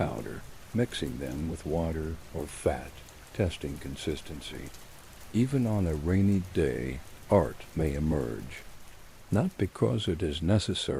mixing them with water or fat, testing consistency. Even on a rainy day, art may emerge, not because it is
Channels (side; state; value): both; identical; correlation 1.00